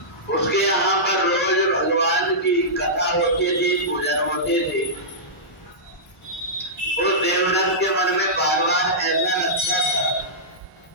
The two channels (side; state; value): both; normal; correlation -0.15